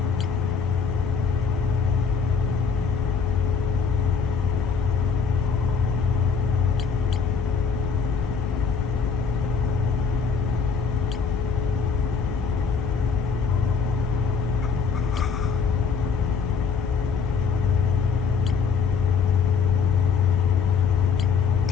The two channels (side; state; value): right; quieter; 5.7 dB